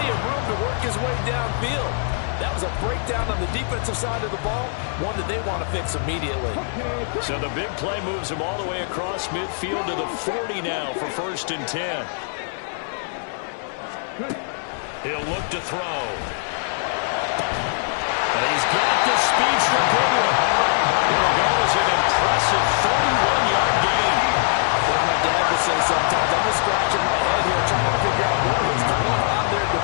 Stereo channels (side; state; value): right; silent; digital silence